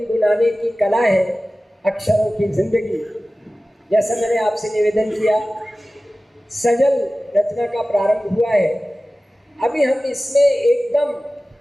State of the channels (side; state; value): both; normal; correlation 0.96